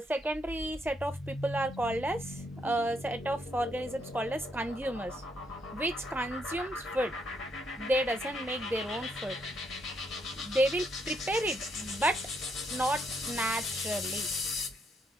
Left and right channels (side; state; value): both; normal; correlation 0.75